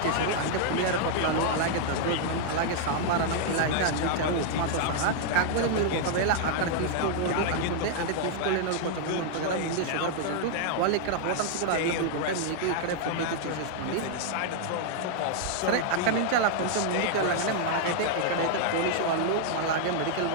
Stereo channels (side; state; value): both; different; correlation -0.01